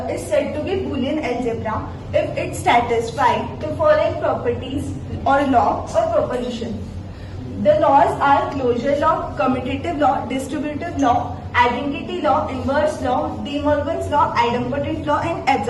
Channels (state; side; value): identical; both; correlation 1.00